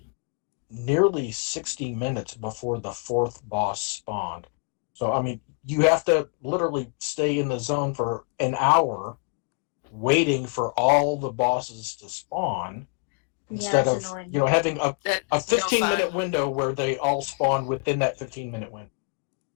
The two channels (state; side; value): quieter; right; 36.5 dB